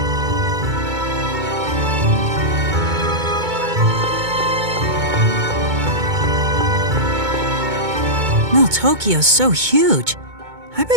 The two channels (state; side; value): late; left; 2.2 ms